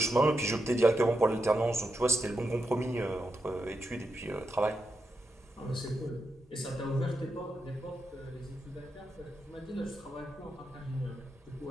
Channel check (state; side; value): normal; both; correlation 0.86